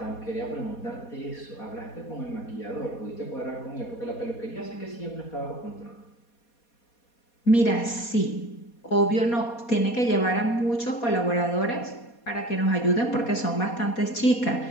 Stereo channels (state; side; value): late; right; 4.2 ms